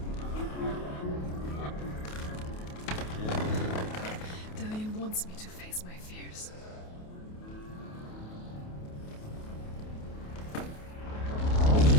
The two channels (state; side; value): late; right; 28 ms